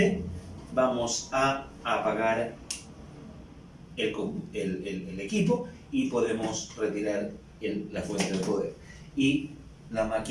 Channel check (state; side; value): identical; both; correlation 1.00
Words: vamos a apagar el equipo, y podemos retirar la fuente de poder, y la